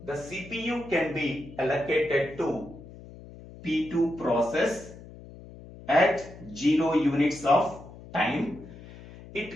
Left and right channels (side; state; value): left; noise; hum, 17 dB below the sound